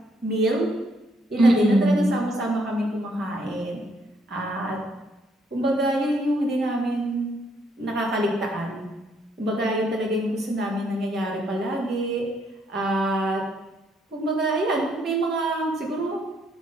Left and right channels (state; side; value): normal; both; correlation 0.70